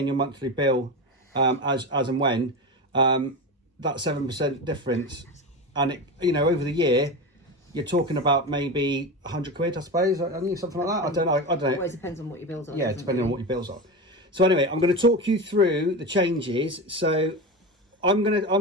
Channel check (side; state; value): both; normal; correlation 0.23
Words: your monthly bill as and when. That 7% difference, and it, you know, over the year, you're talking about maybe 100 quid, I suppose. I think something like that. I don't know. It always depends on what your bills are. Yeah, depending on what your bills are. So anyway, I'm going to talk you through the changes. So I'm going